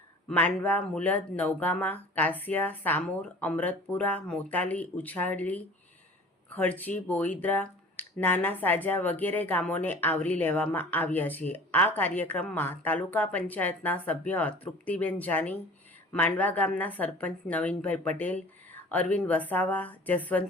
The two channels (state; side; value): normal; both; correlation 0.44